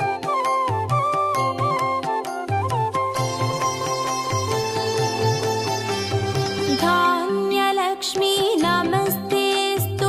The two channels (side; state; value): both; identical; correlation 1.00